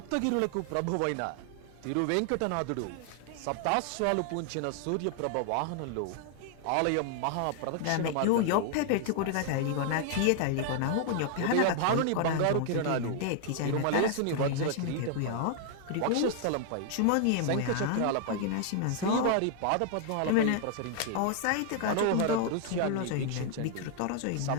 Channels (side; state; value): both; different; correlation 0.00